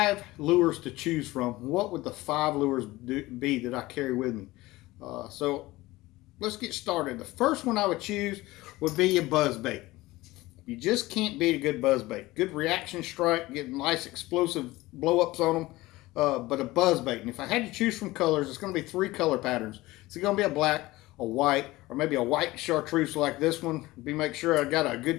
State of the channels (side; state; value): right; quieter; 19.1 dB